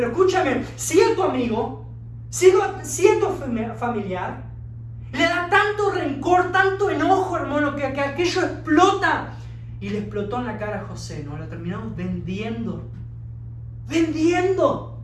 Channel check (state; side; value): identical; both; correlation 1.00